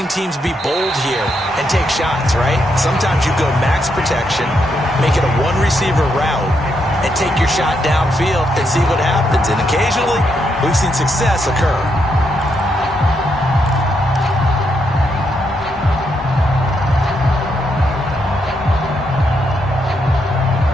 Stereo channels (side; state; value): both; normal; correlation 0.79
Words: teams be bold here and take shots, right? Sometimes you go max protection, make it a one-receiver route, and take your shot downfield and see what happens. And occasionally, we've seen success occur.